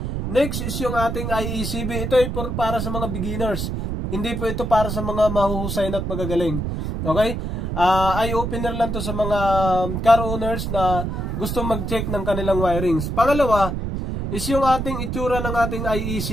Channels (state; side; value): noise; right; rumble, 3 dB below the sound